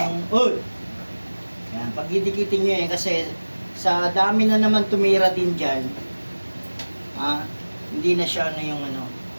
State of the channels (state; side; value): inverted; both; correlation -1.00